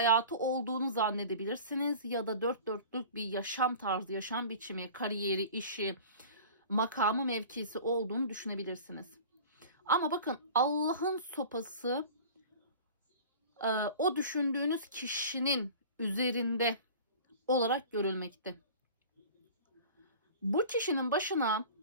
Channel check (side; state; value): both; inverted; correlation -0.40